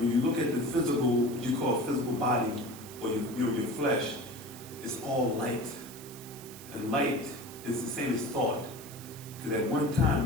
you look at the physical, what you call physical body, or your flesh, it's all light. And light is the same as thought. Because at one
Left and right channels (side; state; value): right; noise; hiss, 16 dB below the sound